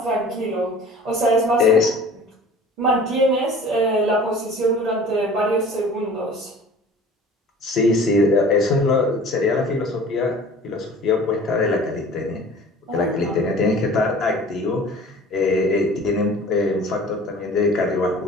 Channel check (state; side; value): normal; both; correlation 0.45